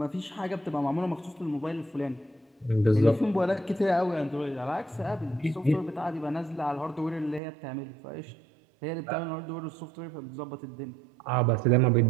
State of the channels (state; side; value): drops out; left; at 7.4 s